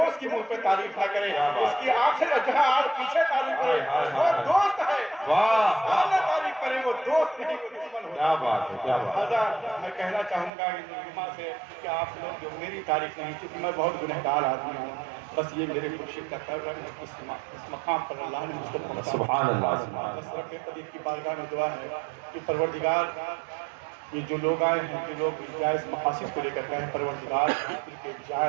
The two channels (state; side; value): drops out; left; at 10.5 s